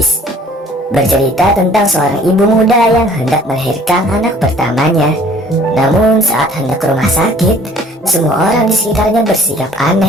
Bercerita tentang seorang ibu muda yang hendak melahirkan anak pertamanya. Namun saat hendak ke rumah sakit, semua orang di sekitarnya bersikap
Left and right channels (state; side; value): normal; both; correlation 0.54